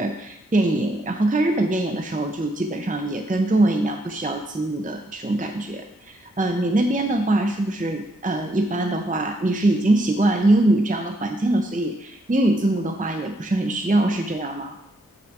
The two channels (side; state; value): both; normal; correlation 0.75